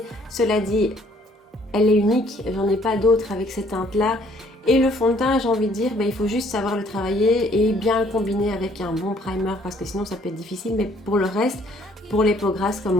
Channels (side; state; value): both; normal; correlation 0.62